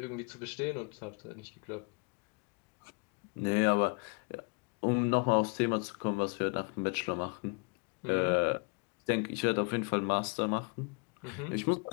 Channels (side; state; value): right; quieter; 33.4 dB